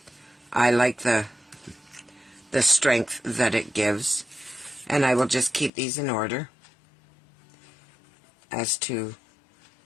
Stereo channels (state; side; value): drops out; right; at 5.7 s